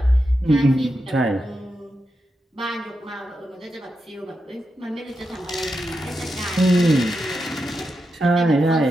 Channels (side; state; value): both; normal; correlation 0.87